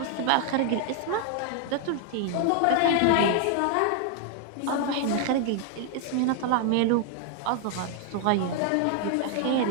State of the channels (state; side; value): different; both; correlation 0.00